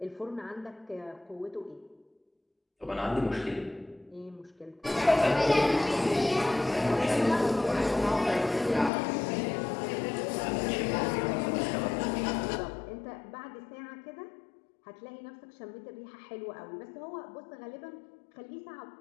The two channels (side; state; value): right; drops out; at 8.9 s